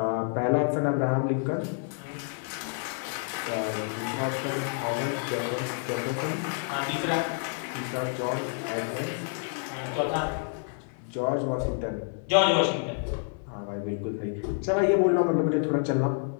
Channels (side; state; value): right; silent; 59 dB below the other